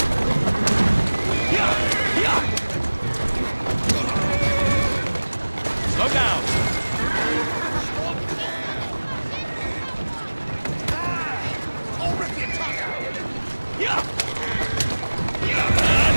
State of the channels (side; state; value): both; inverted; correlation -1.00